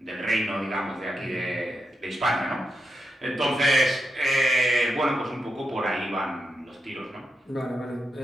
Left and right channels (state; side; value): normal; both; correlation 0.85